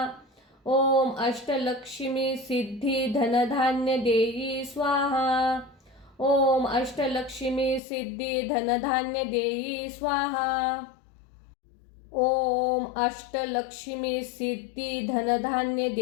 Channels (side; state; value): right; drops out; at 7.8 s